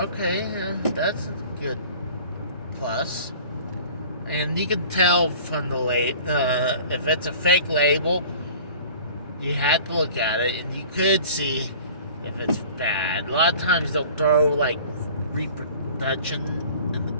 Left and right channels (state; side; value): inverted; both; correlation -0.45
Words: that's a good plus. And you can tell from the if it's a fake label, you have to look at it, and you could see if it's bad. A lot of times they'll throw like reproduction in